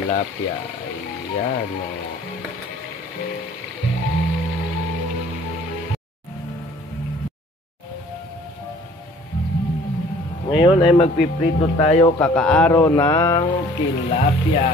Ayan o. Ngayon ay magpiprito tayo kakaaro ng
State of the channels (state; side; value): normal; both; correlation 0.53